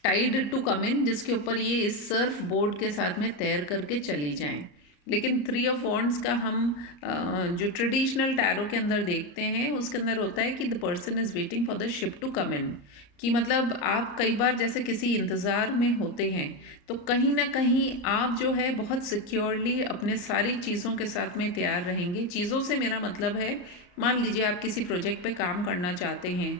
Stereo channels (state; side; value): late; right; 34 ms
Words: tide to come in, जिसके ऊपर ये इस सर्फ बोर्ड के साथ में तैर करके चली जाएं। लेकिन 3 ऑफ वॉन्ड्स का हम जो ट्रेडिशनल टैरो के अंदर देखते हैं उसके अंदर होता है कि the person is waiting for the ship to come in. कि मतलब आप कई बार जैसे किसी इंतज़ार में होते हैं तो कहीं ना कहीं आप जो है बहुत सिक्योरली अपने सारी चीज़ों के साथ में तैयार रहेंगे। चीज़ों से मेरा मतलब है, मान लीजिए आप किसी प्रोजेक्ट पे काम करना चाहते हैं,